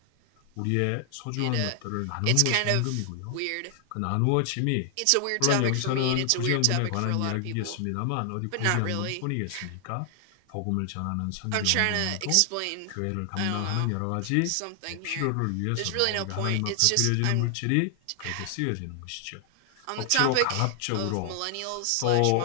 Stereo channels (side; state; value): both; different; correlation 0.00